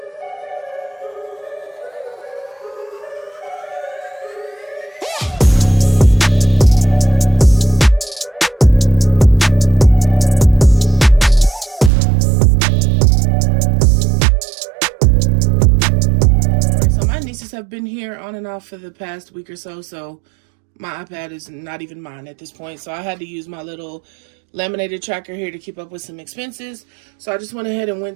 Have been here on and off for the past week or so my iPad is not even mine at this point, so I had to use my little laminated tracker here to keep up with some expenses. So I just went ahead and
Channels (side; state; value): left; drops out; at 11.9 s